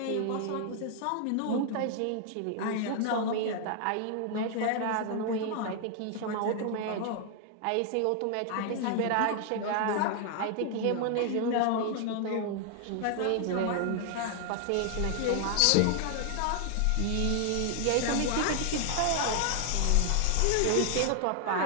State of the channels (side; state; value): both; different; correlation 0.00